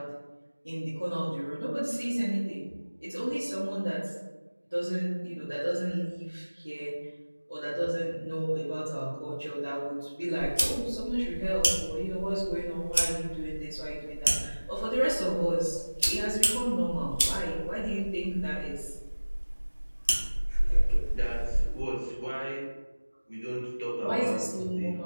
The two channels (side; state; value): both; inverted; correlation -1.00